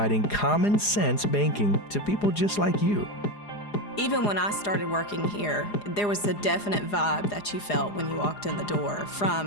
common sense banking to people just like you. Even when I started working here, there was a definite vibe that you felt when you walked in the door,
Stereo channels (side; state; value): right; late; 4.9 ms